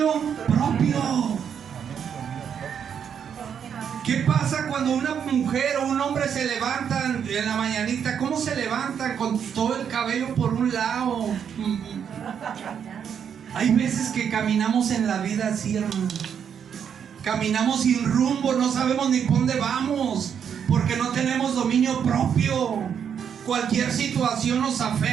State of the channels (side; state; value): left; quieter; 7.9 dB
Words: propio. ¿Qué pasa cuando una mujer o un hombre se levantan en la mañanita? ¿Cómo se levantan? Con todo el cabello por un lado. Hay veces que caminamos en la vida así, hermano. Caminamos sin rumbo, no sabemos ni por dónde vamos, porque no tenemos dominio propio. Cualquier situación nos